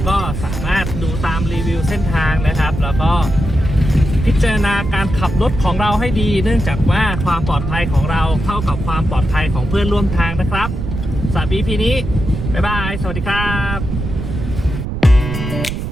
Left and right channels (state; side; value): noise; right; rumble, 5 dB below the sound